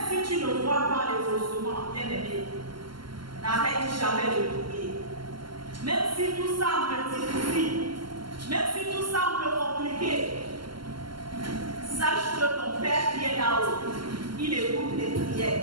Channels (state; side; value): late; left; 0.72 ms